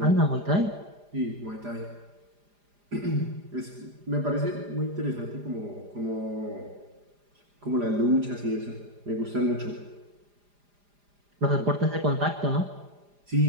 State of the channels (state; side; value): late; left; 4.9 ms